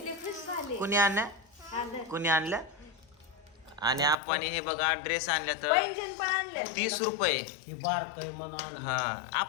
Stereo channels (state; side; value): drops out; right; at 4.2 s